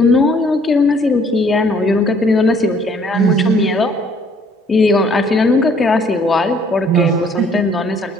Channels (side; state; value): both; normal; correlation 0.61